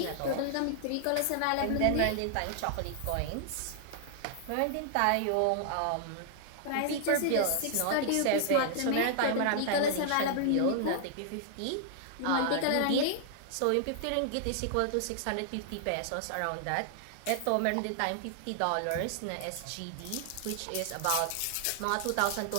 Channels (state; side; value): different; both; correlation -0.01